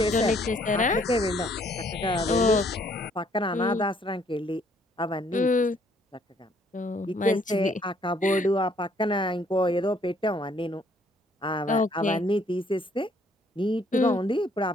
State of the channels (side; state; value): both; normal; correlation 0.65